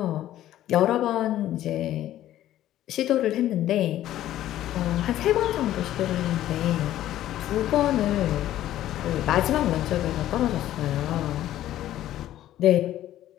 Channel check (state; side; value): quieter; right; 13.2 dB